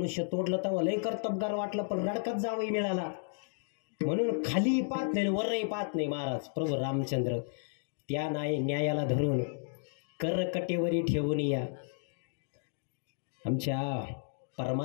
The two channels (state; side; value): silent; right; digital silence